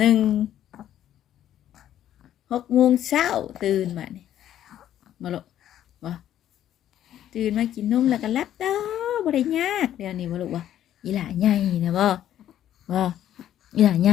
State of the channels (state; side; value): quieter; right; 11.4 dB